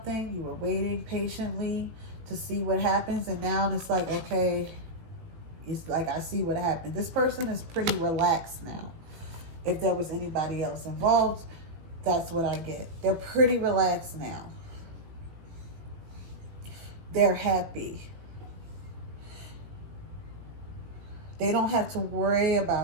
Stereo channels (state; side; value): late; left; 18 ms